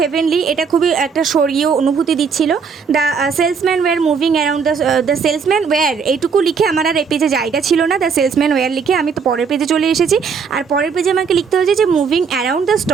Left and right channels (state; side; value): quieter; left; 5.8 dB